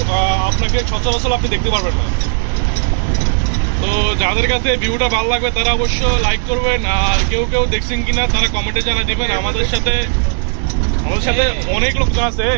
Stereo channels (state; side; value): silent; left; digital silence